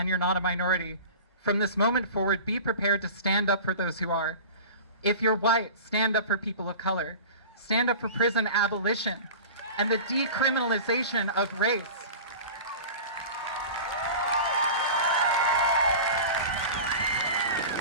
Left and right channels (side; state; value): both; inverted; correlation -0.35